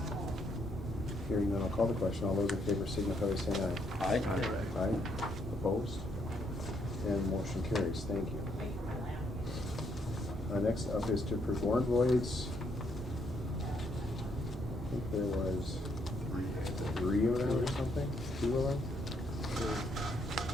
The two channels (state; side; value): normal; both; correlation 0.73